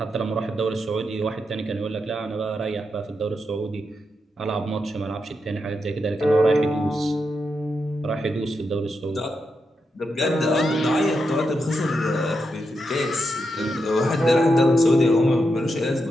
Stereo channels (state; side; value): normal; both; correlation 0.85